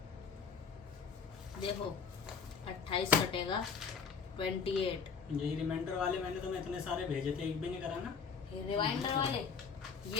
देखो 28 कटेगा 28। यही रिमाइंडर वाले मैंने तुम्हें इतने सारे भेजे थे, एक भी नहीं करा ना। ये रिमाइंडर वाले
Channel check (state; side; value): quieter; right; 5.8 dB